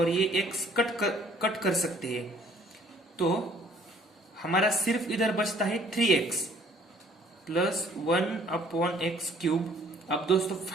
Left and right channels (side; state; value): both; normal; correlation 0.59